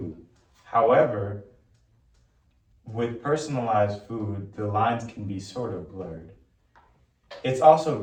However, with personalized food, the lines can be sort of blurred. It's also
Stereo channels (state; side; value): identical; both; correlation 1.00